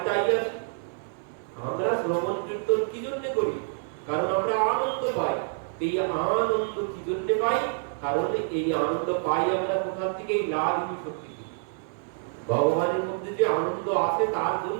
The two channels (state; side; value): silent; left; 57 dB below the other